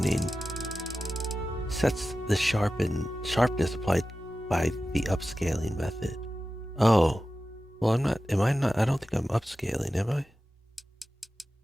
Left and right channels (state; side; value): normal; both; correlation 0.94